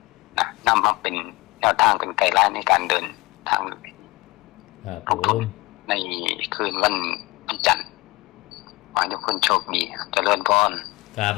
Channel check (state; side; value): quieter; right; 22.7 dB